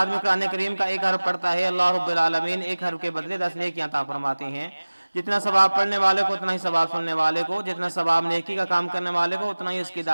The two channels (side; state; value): both; inverted; correlation -1.00